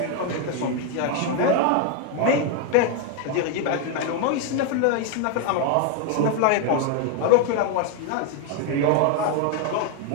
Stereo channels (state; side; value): different; both; correlation 0.01